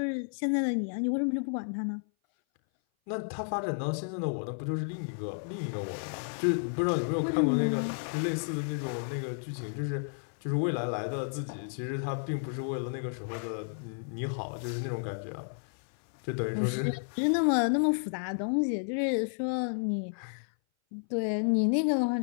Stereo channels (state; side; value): silent; right; 57 dB below the other